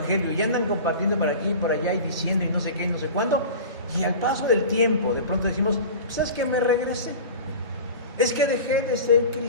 y andan compartiendo por aquí y por allá y diciendo y no sé qué, no sé cuándo, y al paso del tiempo de pronto decimos, pues es que me regresé, es que dejé de ser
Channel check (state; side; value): inverted; both; correlation -0.35